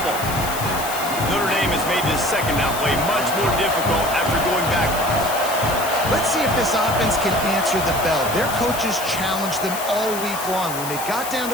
Notre Dame has made this 2nd down play much more difficult after going backwards. Let's see if this offense can answer the bell. Their coaches challenged them all week long. When they got down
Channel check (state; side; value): noise; left; hiss, 8 dB below the sound